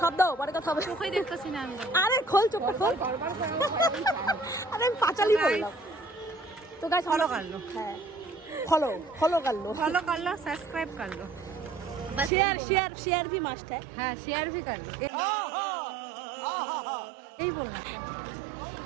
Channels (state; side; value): drops out; left; at 12.3 s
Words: শব্দ, পরে কথা হবে। চোখেই দেখতেছি না আমি। আরে খোল চোখটা খোল। আরে আমি পাঁচালি বললাম তো। গাইস ফলো कर लो। হ্যাঁ, ফলো कर लो, सब्सक्राइब कर लो, शेयर भी मस्ट है। हाँ शेयर भी कर लो। यही बोलना था।